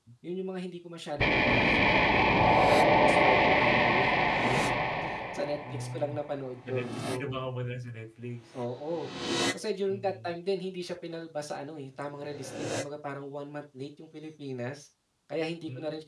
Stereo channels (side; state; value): both; identical; correlation 1.00